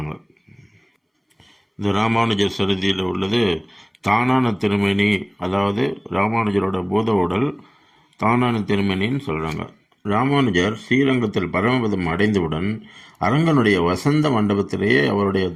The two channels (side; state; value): both; identical; correlation 1.00